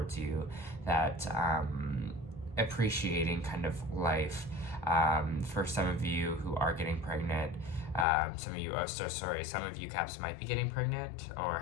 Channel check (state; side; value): drops out; right; at 8.1 s